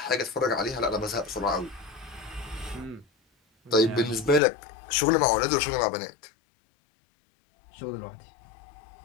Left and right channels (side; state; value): right; drops out; at 4.4 s